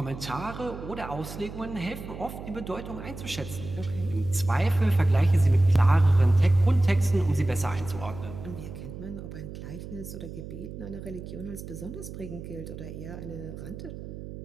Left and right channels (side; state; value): right; noise; hum, 11 dB below the sound